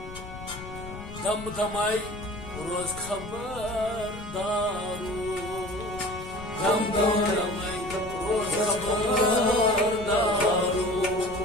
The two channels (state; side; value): noise; left; rumble, 12 dB below the sound